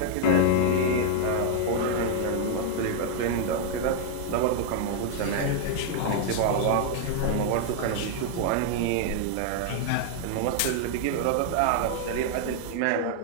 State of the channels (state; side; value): different; both; correlation 0.00